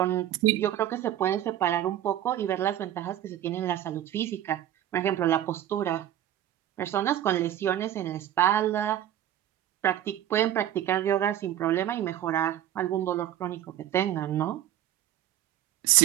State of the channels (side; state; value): left; quieter; 11.8 dB